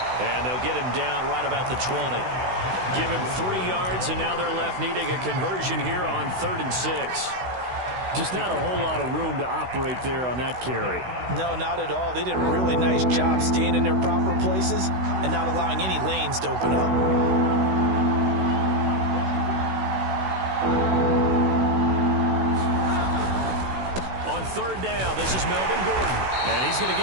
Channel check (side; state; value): left; late; 16 ms